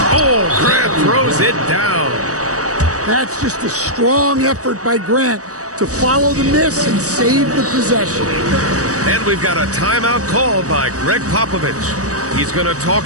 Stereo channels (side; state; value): left; late; 0.66 ms